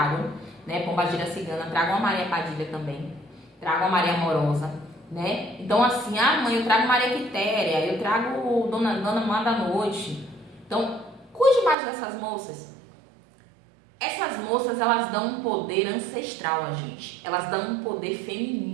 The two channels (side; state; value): left; drops out; at 11.8 s